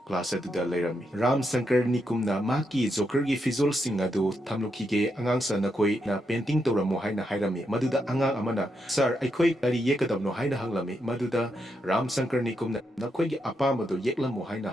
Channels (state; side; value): normal; both; correlation 0.82